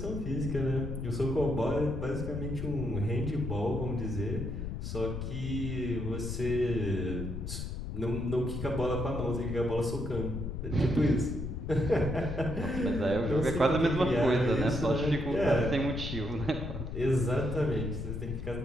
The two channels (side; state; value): left; noise; rumble, 5 dB below the sound